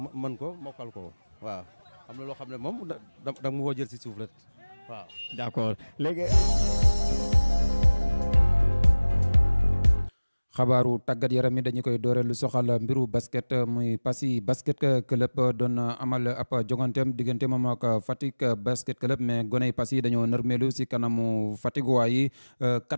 mën ko mokkal ko waaw am na loo xam ne moom da mu woo jël si suuf rek waaw. d'accord léegi. xabaaru tàggat yaram yi dañu koy doore lu soxal mbiru basket muy Passy basket club doon amal ab joganteem diggante moom ak Fatick basket club mais goney Passy dañoo nërmeelu si kanamu Fatick yi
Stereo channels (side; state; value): both; inverted; correlation -1.00